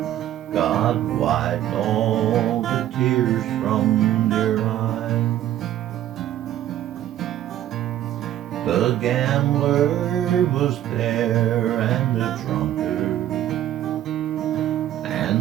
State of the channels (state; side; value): quieter; left; 12.3 dB